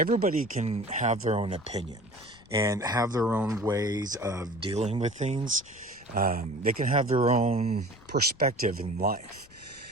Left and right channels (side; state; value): left; noise; rumble, 26 dB below the sound